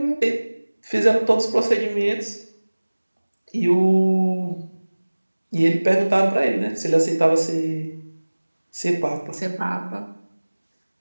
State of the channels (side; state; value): both; inverted; correlation -1.00